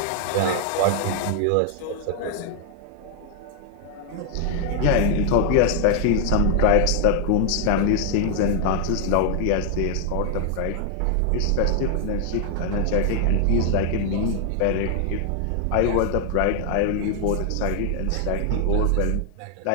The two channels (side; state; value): both; different; correlation 0.00